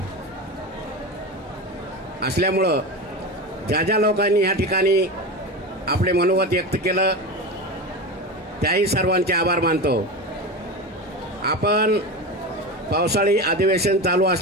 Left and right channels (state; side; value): normal; both; correlation 0.24